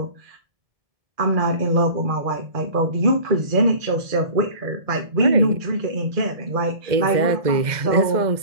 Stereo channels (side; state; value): left; late; 1.7 ms